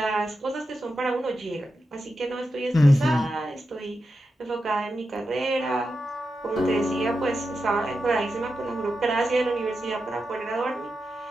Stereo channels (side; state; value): both; normal; correlation 0.89